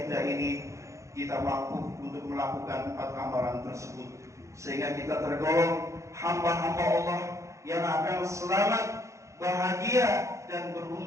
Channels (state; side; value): late; left; 0.15 ms